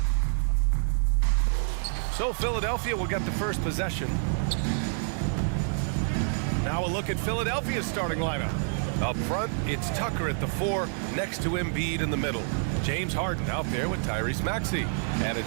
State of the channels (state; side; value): silent; left; digital silence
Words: So Philadelphia will get the first possession. Now a look at Philadelphia's starting lineup. Up front, it's Tucker at the 4, next to Embiid in the middle. James Harden out there with Tyrese Maxey. And